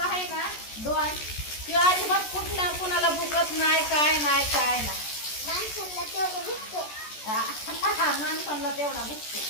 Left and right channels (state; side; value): late; right; 14 ms